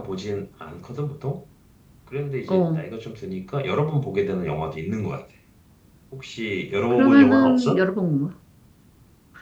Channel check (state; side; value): identical; both; correlation 1.00